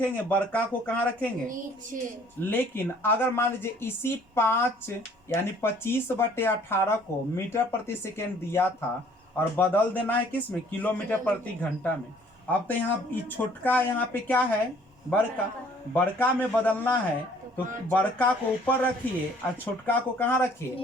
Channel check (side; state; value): both; normal; correlation 0.57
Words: बड़का को कहाँ रखेंगे? नीचे। लेकिन अगर मान लीजिए इसी 5 यानी 25/18 को मीटर प्रति सेकेंड दिया था और बदल देना है किस में? किलोमीटर प्रति घंटा में। अब तो यहाँ छोटका यहाँ पे क्या है? बड़का में बदलना है, तो बड़का को ऊपर रखिए और छोटका को कहाँ